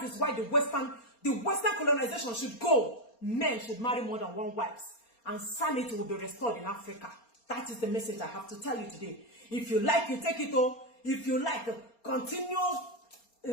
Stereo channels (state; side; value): late; right; 4.3 ms